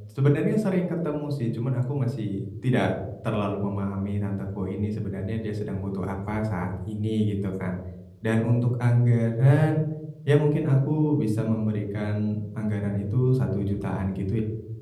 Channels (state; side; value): identical; both; correlation 1.00